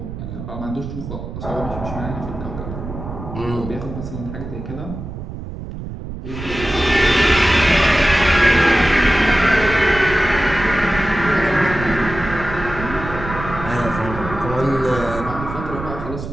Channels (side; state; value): right; noise; rumble, 9 dB below the sound